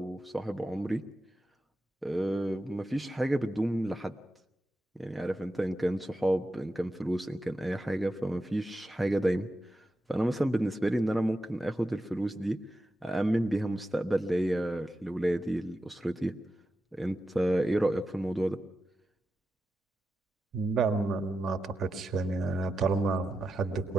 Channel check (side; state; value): both; normal; correlation 0.90